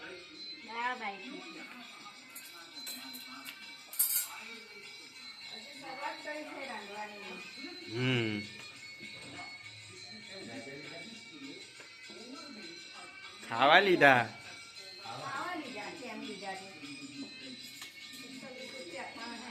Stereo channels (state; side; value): identical; both; correlation 1.00